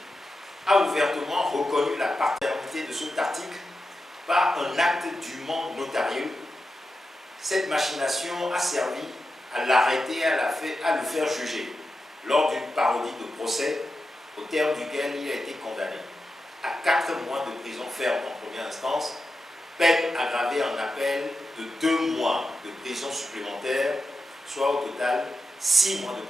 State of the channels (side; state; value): both; normal; correlation 0.90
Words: a ouvertement reconnu la paternité de cet article par un acte dûment notarieux, cette machination a servi à l'arrêter et à le faire juger lors d'une parodie de procès au terme duquel il a été condamné à 4 mois de prison ferme en première instance, peine aggravée en appel de 2 mois de prison supplémentaire, soit au total 6 mois